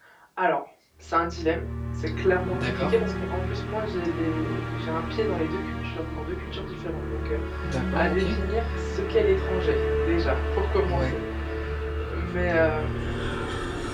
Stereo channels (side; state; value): both; identical; correlation 1.00